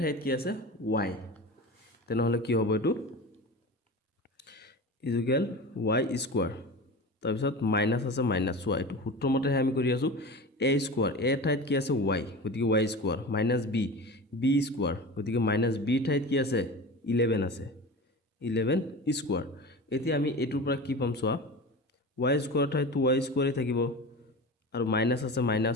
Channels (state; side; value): normal; both; correlation 0.31